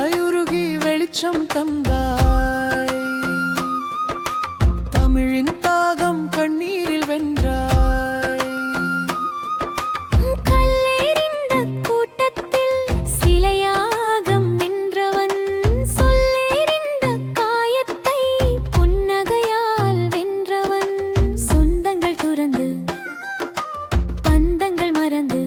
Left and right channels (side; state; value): both; identical; correlation 1.00